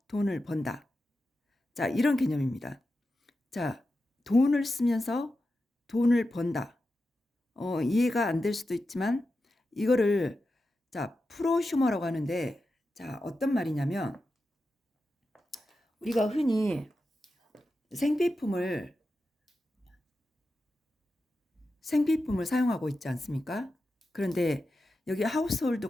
돈을 번다. 자, 이런 개념입니다. 자, 돈을 쓰면서 돈을 번다. 이해가 안 될 수도 있지만 이거를 자, 프로슈머라고 하는데 자, 어떤 말이냐면 우리가 흔히 생필품을 사용하고 있지 않습니까? 그런데 여기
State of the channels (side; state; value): both; normal; correlation 0.90